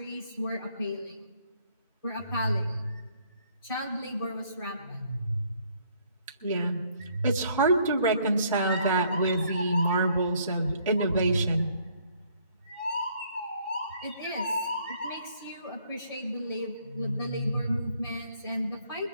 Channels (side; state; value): both; inverted; correlation -0.64